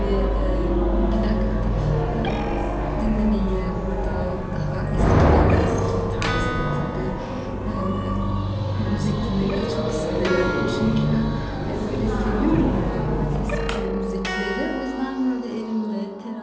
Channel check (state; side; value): identical; both; correlation 1.00